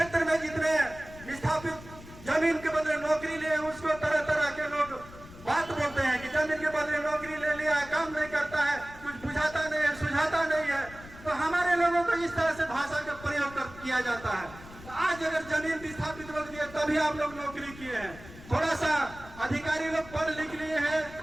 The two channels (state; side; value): noise; left; rumble, 17 dB below the sound